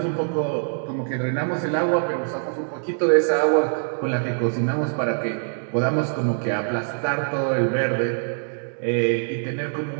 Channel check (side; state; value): left; silent; digital silence